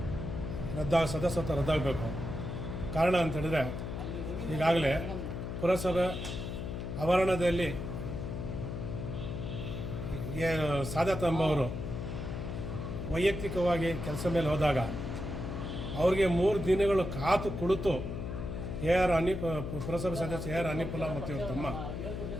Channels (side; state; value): left; noise; hum, 5 dB below the sound